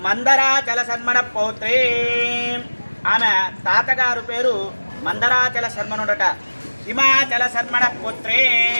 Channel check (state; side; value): inverted; both; correlation -1.00